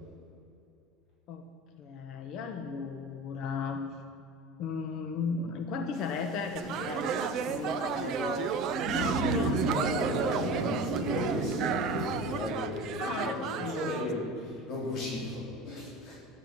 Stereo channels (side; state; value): both; normal; correlation 0.34